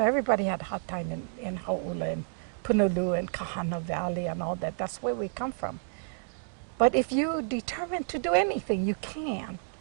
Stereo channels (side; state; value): left; silent; digital silence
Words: everybody had a hard time in Hauula and Punaluu and Kahana Valley and all that. That's where we come from. But if you determine to do anything, you can.